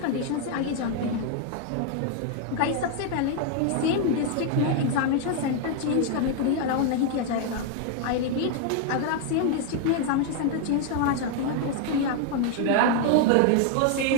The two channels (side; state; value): both; different; correlation 0.00